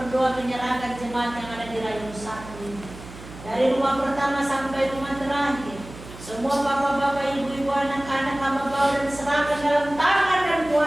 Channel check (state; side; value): noise; right; hum, 16 dB below the sound